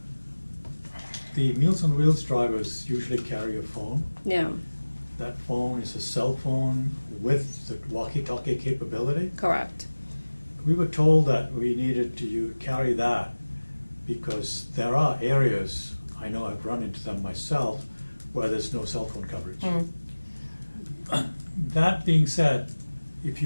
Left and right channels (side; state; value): both; inverted; correlation -1.00